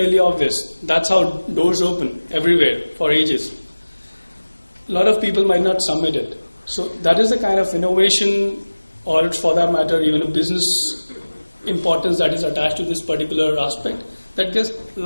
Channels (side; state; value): both; inverted; correlation -1.00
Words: obvious. That's how doors open everywhere for ages. A lot of people might not submit it. So that is the kind of innovation, or for that matter, even a business importance that is attached to this particular aspect that gets